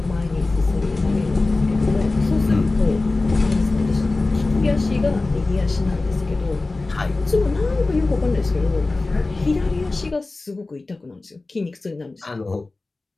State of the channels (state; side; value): quieter; right; 3.3 dB